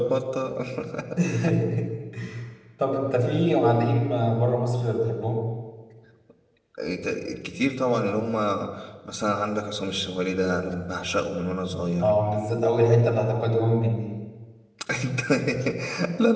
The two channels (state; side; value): identical; both; correlation 1.00